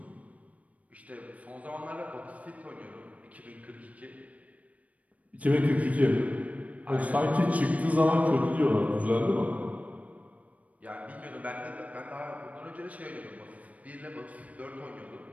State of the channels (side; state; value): left; late; 0.069 ms